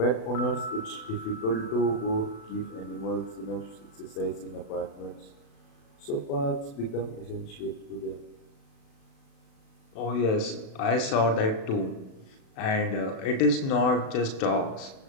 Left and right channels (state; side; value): late; right; 36 ms